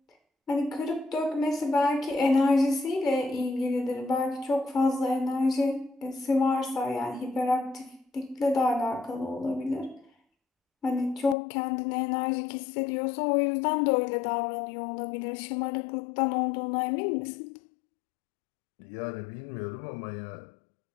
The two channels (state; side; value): drops out; right; at 11.4 s